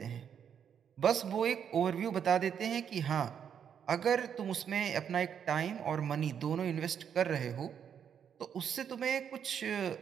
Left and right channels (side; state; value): left; quieter; 8.1 dB